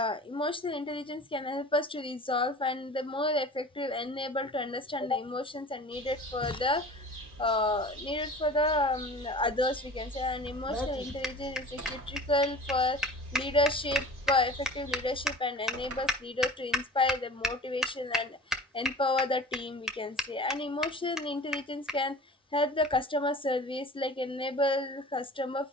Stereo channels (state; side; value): normal; both; correlation 0.41